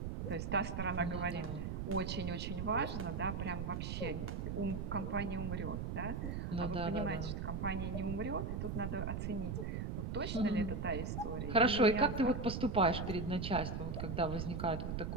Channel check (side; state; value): right; noise; rumble, 3 dB below the sound